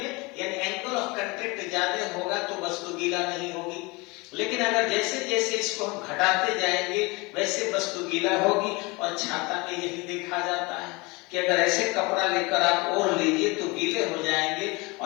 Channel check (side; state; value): right; quieter; 25.6 dB